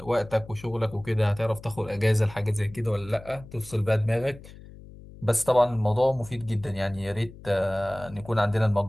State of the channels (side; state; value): left; noise; hum, 18 dB below the sound